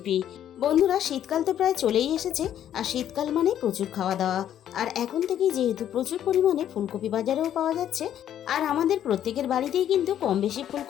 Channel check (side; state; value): right; quieter; 10.6 dB